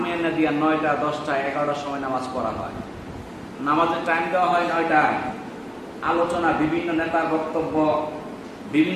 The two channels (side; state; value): both; identical; correlation 1.00